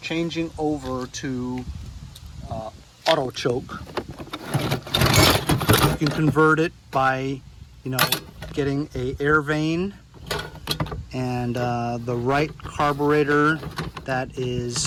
over to auto choke. You can convert it by, getting a air vane and the right carburetor that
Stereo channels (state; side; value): identical; both; correlation 1.00